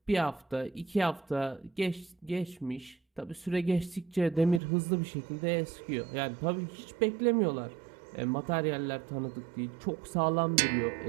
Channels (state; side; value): drops out; left; at 4.6 s